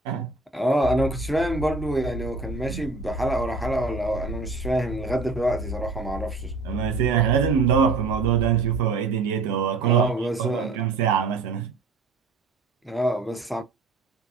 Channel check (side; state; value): left; quieter; 3.7 dB